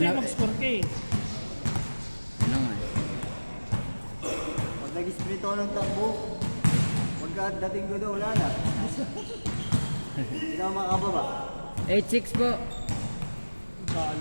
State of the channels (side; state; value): both; inverted; correlation -1.00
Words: na. mag-score ka eh. Ano nga eh. Pag nag-sprint ako ng takbo, pagkadating ko daw, wala na. Hindi ako makababa. 8-6 po.